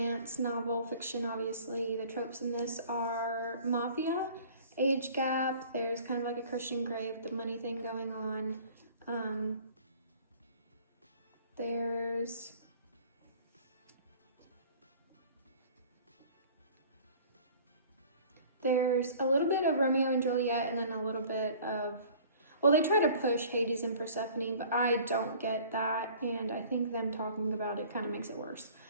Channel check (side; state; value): both; inverted; correlation -0.48